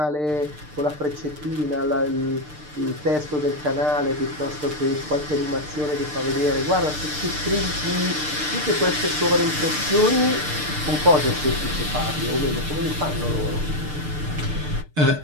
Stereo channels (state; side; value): late; left; 6.7 ms